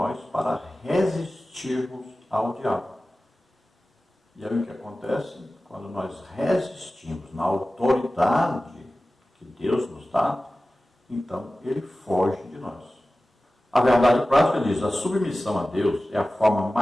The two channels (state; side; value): normal; both; correlation 0.96